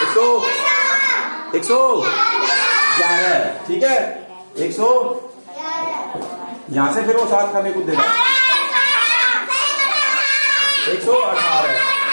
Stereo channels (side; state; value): both; inverted; correlation -1.00